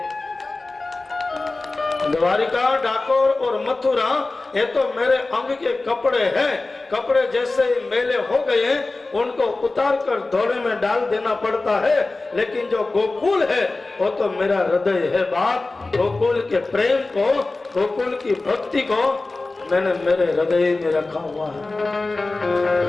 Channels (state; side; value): quieter; right; 3.3 dB